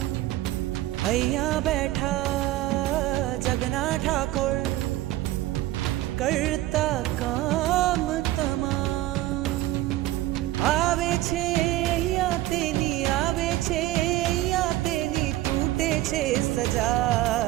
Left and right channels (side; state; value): left; quieter; 15.9 dB